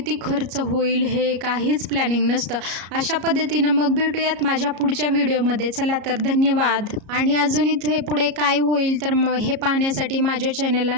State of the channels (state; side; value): late; left; 34 ms